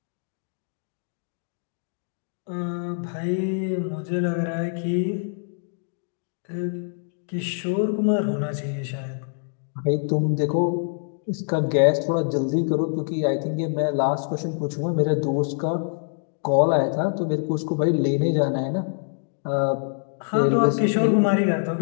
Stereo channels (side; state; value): right; silent; digital silence